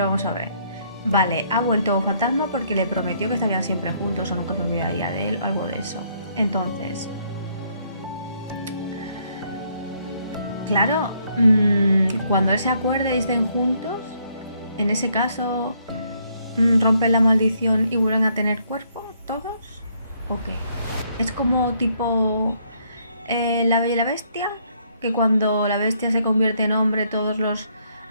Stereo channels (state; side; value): inverted; both; correlation -0.69